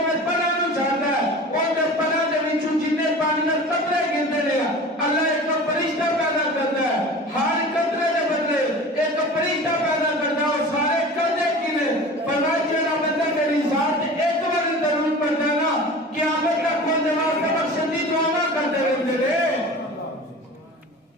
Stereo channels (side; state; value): both; normal; correlation 0.38